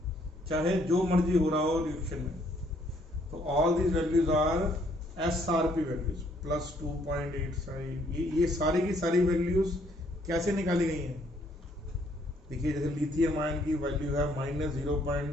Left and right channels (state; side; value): normal; both; correlation 0.67